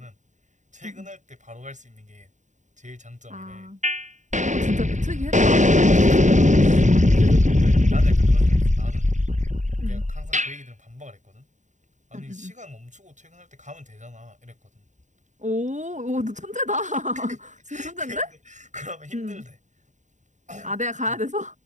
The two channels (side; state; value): left; late; 0.35 ms